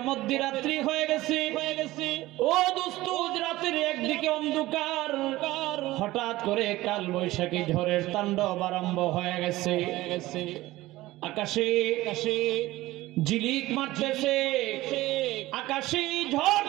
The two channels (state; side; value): quieter; left; 17.6 dB